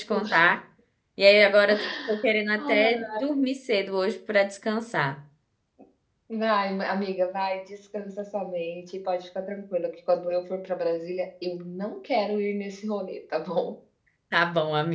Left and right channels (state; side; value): identical; both; correlation 1.00